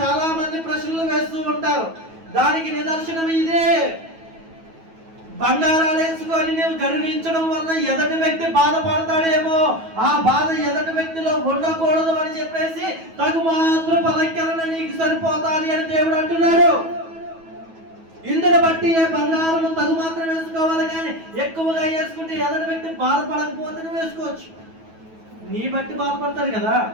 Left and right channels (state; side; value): late; left; 9.2 ms